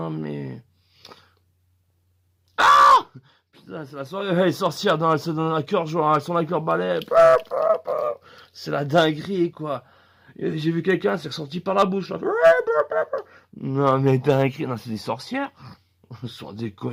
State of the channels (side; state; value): both; identical; correlation 1.00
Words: mais. Putain, c'est la soirée. Elle est sorcière. Non, elle se donne un cœur joie. Elles sont avec leur balai. C'est la dinguerie quoi. J'ai vu quelqu'un, c'est ressorti par la bouche. Là. Non mais dinguerie. Non, c'est des sorcières. Sans